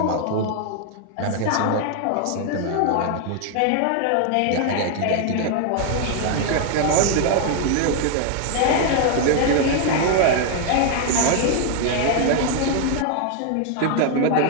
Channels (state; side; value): different; both; correlation 0.00